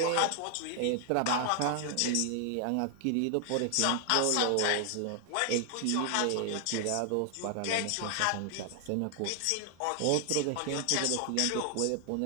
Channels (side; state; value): both; different; correlation 0.00